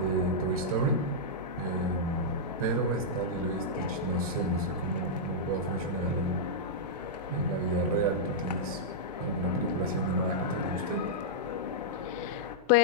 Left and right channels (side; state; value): both; normal; correlation -0.09